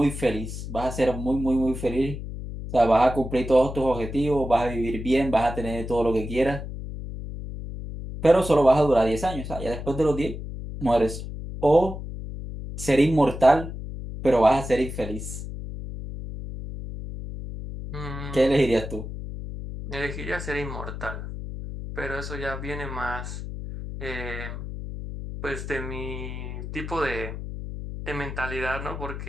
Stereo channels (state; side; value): noise; left; hum, 8 dB below the sound